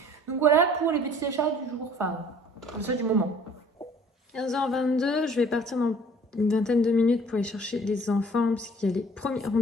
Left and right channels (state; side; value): normal; both; correlation 0.53